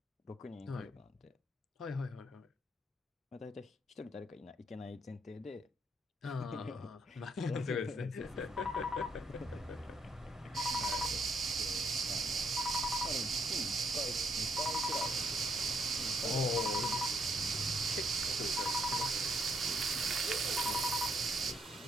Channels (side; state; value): both; normal; correlation 0.72